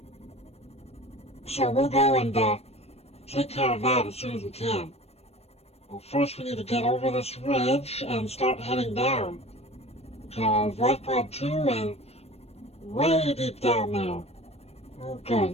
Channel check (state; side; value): late; right; 0.30 ms